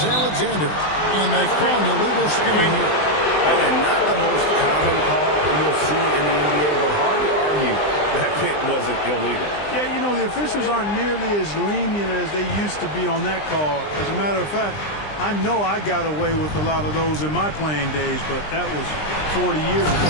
Alexander. And they call an illegal screen here. And not the most common call you'll see in the NBA, but hard to argue that pick wasn't illegal. Yeah, you know, the officials aren't nearly as lenient as they used to be on that call. As a matter of fact, I know I got away with a lot of those in my playing days, but that was 40 years ago.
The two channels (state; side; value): late; right; 20 ms